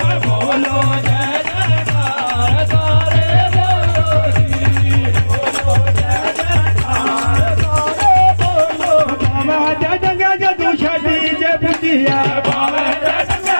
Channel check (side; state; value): both; inverted; correlation -1.00